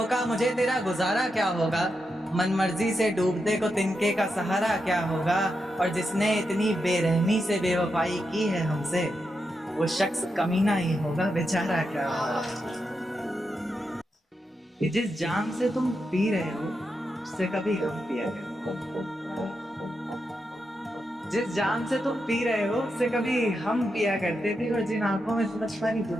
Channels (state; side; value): normal; both; correlation 0.86